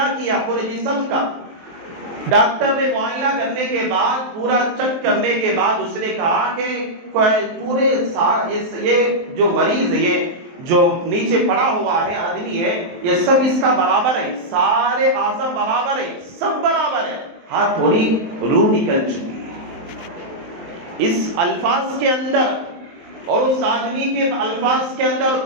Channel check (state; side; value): late; left; 23 ms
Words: کیا پورے جسم کا، ڈاکٹر نے معائنہ کرنے کے بعد پورا چیک کرنے کے بعد اس نے کہا کہ پورے یہ جو مریض ہے، یہ جو نیچے پڑا ہوا ہے آدمی ہے، یہ سب اس کا برابر ہے، سارے اعضاء برابر ہے، سب برابر ہے، ہاں تھوڑی روح نکل چکی ہے۔ اس الفاظ کے اندر اور اس آدمی کے الفاظ کے اندر